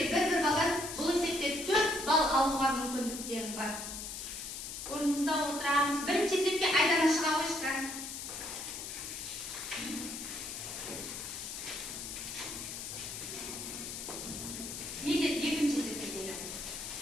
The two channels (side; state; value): left; noise; hiss, 7 dB below the sound